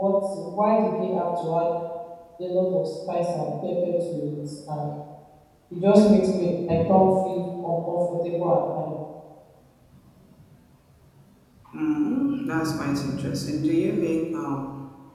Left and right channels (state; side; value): identical; both; correlation 1.00